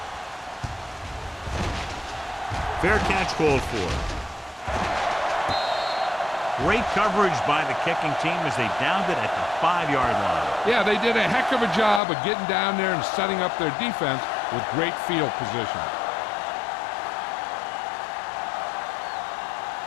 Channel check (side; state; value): right; drops out; at 12.0 s